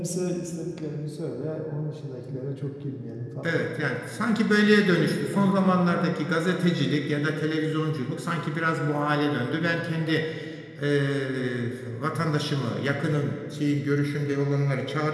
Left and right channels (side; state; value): both; identical; correlation 1.00